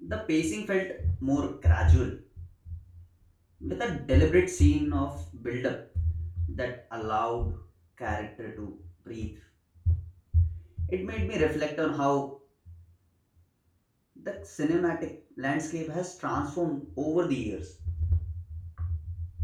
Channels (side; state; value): both; identical; correlation 1.00